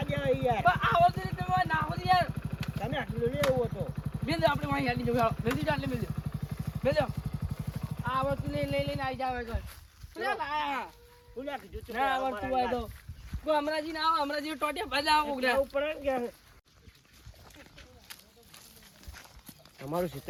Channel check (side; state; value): both; identical; correlation 1.00